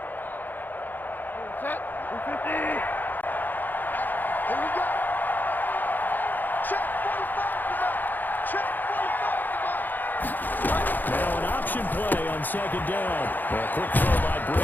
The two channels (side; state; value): right; late; 0.087 ms